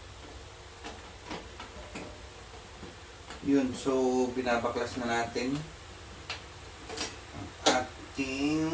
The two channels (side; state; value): both; identical; correlation 1.00